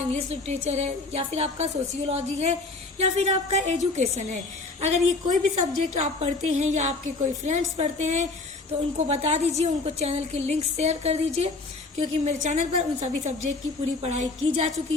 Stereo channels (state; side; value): quieter; right; 3.5 dB